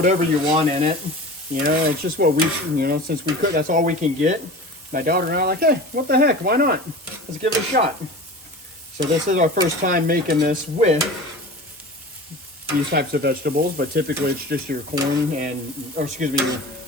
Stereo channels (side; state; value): both; normal; correlation 0.35